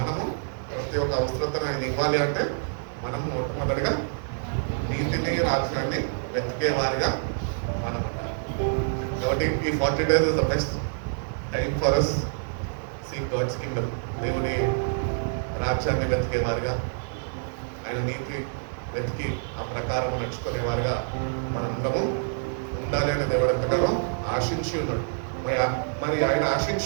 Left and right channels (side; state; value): left; silent; digital silence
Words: మనము ప్రతి ఒక్క అవసరతను ఆయన ఇవ్వాలి అంటే మనము మొట్టమొదటిగా నీతిని రాజ్యాన్ని వెతికే వారిగా మనం ఉండాలి. కాబట్టి ఈ 40 days is the best time for us seek God's kingdom. దేవుని రాజ్యాన్ని వెతికే వారిగా, ఆయన నీతి వెతికి ఆ ప్రకారం నడుచుకునేవారుగా మనందరము ఉండాలి అని దేవుడు ఎంతగానో ఆశించి ఉన్నాడు. మరి ఆయన